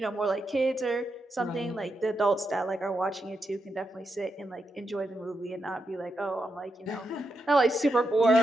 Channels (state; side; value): normal; both; correlation 0.84